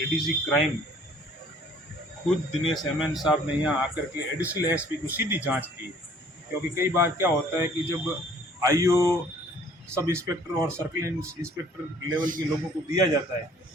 एडीजी क्राइम खुद दिनेश एमएन साहब ने यहाँ आकर के एडिशनल एसपी को सीधी जांच की, क्योंकि कई बार क्या होता है कि जब आईओ सब इंस्पेक्टर और सर्कल इंस्पेक्टर लेवल के लोगों को दिया जाता है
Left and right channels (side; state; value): both; normal; correlation 0.57